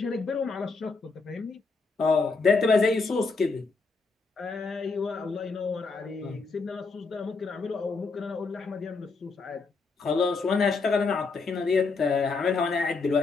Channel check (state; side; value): quieter; right; 4.2 dB